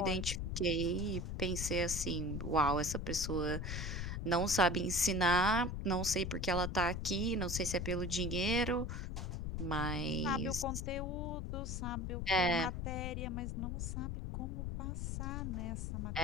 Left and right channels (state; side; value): noise; left; rumble, 3 dB below the sound